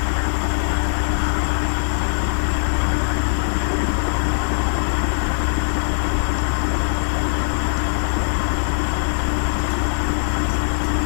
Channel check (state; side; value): silent; right; digital silence